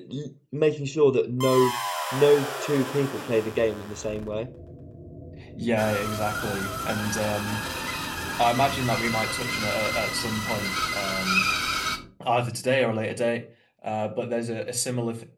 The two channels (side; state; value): both; identical; correlation 1.00